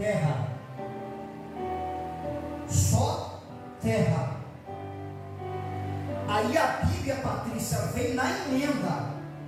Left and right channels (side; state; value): both; identical; correlation 1.00